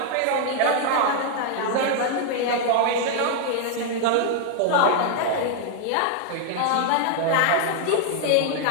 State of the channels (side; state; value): both; different; correlation 0.00